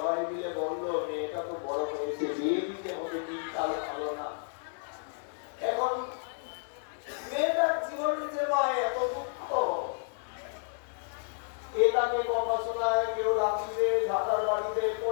মিলে বললো, মেয়েটা তো বড় হয়েছে, বিয়ে দিতে হবে, দিনকাল ভালো না। এখন মেয়েটার জীবনে যে মা এত দুঃখ, কে তাকে কথা শোনায়, কেউ রাত্রিতে ঝাঁটার বাড়িতে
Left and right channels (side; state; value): right; silent; digital silence